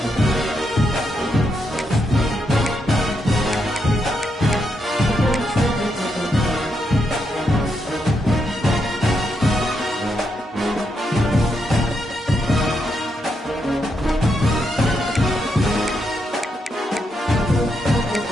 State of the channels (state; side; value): normal; both; correlation 0.81